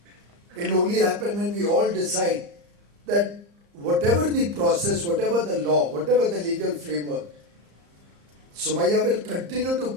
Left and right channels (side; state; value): left; late; 35 ms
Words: It will only happen when we all decide that whatever the process, whatever the law, whatever the legal framework, Somaiya will continue to